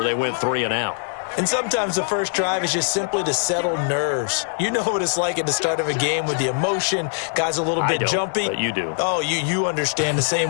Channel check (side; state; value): right; silent; digital silence